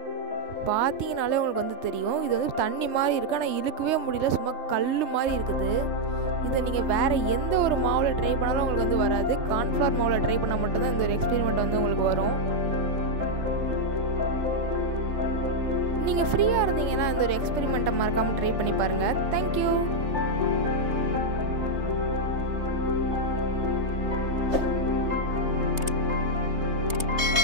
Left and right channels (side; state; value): left; late; 3.2 ms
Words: பார்த்தீங்கனாலே உங்களுக்கு வந்து தெரியும், இது வந்து தண்ணி மாதிரி இருக்குது, ஆனால் இழுக்கவே முடியல, சும்மா கல் மாதிரி இருக்குது. இதை நீங்கள் வேறு எந்த ஒரு மாவில் ட்ரை பண்ணாலும் உங்களுக்கு வந்து வராது. கார்ன்ஃப்ளவர் மாவில் ட்ரை பண்ணால் மட்டும்தான் இந்த ஒரு எக்ஸ்பெரிமெண்ட் வந்து உங்களுக்கு வரும். நீங்கள் ஃப்ரீயாக இருந்தீங்கன்னா இந்த ஒரு எக்ஸ்பெரிமெண்ட்டை மறக்காமல் ட்ரை பண்ணி பாருங்கள். தேங்க்யூ.